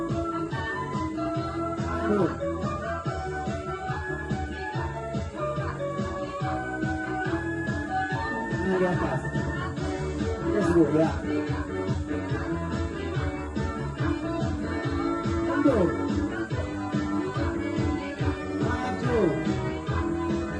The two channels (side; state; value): both; identical; correlation 1.00